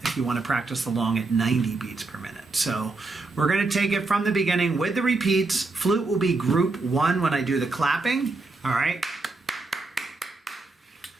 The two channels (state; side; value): quieter; left; 3.5 dB